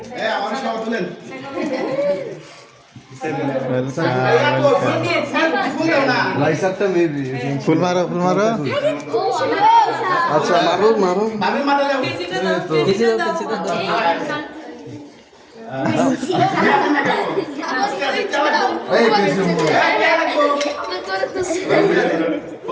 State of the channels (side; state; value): both; identical; correlation 1.00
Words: ফুল মারো ফুল মারো। আচ্ছা মারো মারো পিছিয়ে দাও